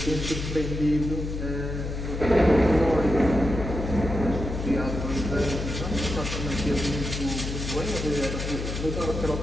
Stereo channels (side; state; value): left; noise; hum, 5 dB below the sound